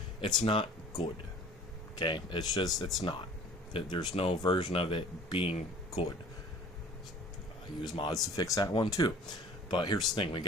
It's not good. Okay? It's not. There's no version of it being good. I use mods to fix that one too. But here's the thing. We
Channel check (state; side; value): normal; both; correlation 0.48